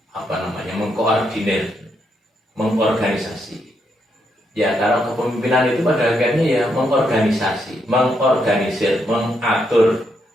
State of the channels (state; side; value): normal; both; correlation 0.78